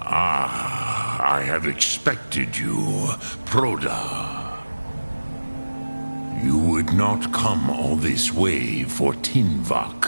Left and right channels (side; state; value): both; inverted; correlation -1.00